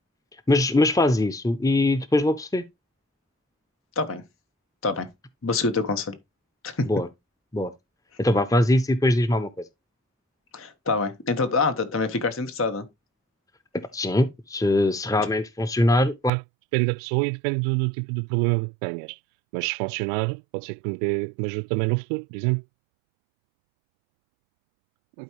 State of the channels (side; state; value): left; drops out; at 16.3 s